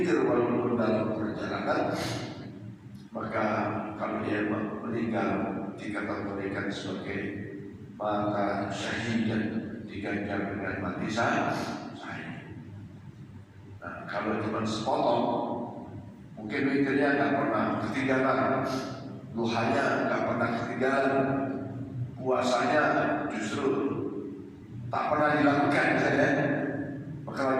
walaupun dalam perjalanan, maka kalau dia meninggal dikategorikan sebagai maka syahidan, diganjar dengan mati syahid. Nah, kalau cuma sepotong, mungkin witirnya nggak pernah ketinggalan, duhanya nggak pernah ketinggalan, puasanya justru tak pernah dilakukan saja. Maka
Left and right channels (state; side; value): identical; both; correlation 1.00